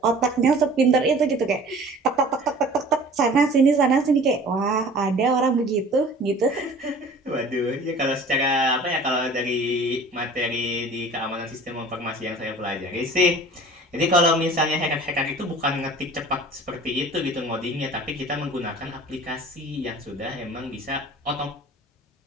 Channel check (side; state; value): both; normal; correlation 0.45